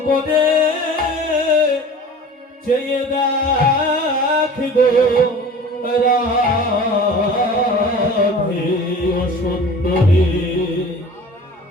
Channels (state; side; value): normal; both; correlation 0.41